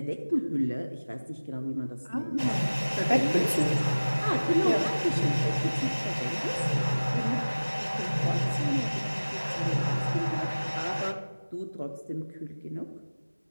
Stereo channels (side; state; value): both; inverted; correlation -1.00